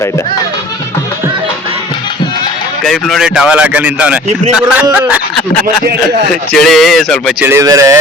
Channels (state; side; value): normal; both; correlation 0.47